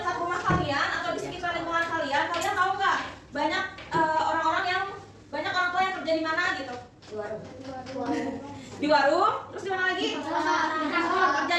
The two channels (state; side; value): identical; both; correlation 1.00